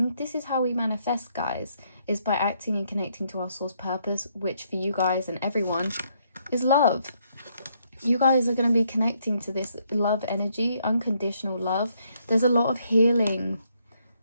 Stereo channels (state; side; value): inverted; both; correlation -0.73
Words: This is how we manifest, guys, is by acting and connecting to our source purpose, which for you guys and everyone is love. You guys are going to be connecting to this love energy, unconditional love. There's a lot of healing.